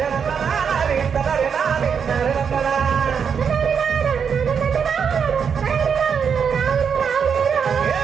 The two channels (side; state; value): left; quieter; 6.8 dB